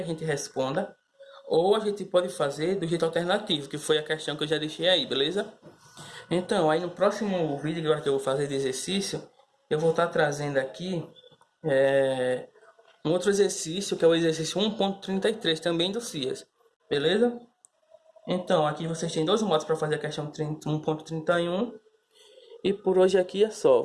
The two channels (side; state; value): both; identical; correlation 1.00